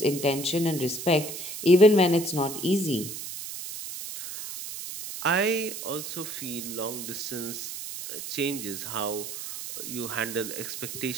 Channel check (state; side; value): noise; right; hiss, 8 dB below the sound